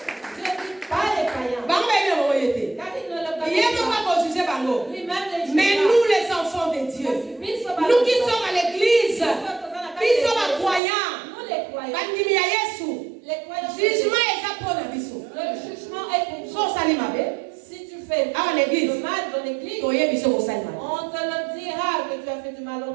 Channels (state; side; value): drops out; left; at 10.8 s